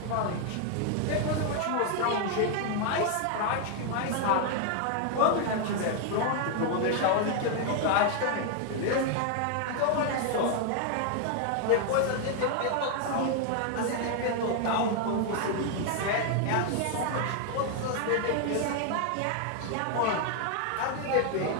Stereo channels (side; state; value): both; different; correlation 0.00